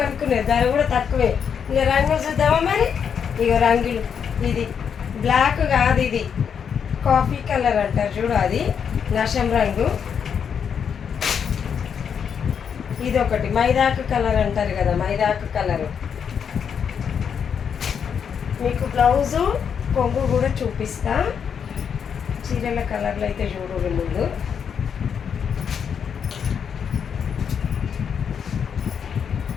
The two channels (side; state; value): right; quieter; 7.3 dB